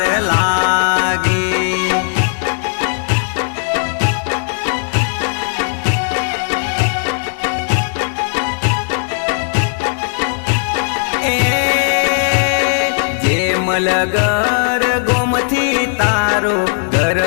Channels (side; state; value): right; silent; 68 dB below the other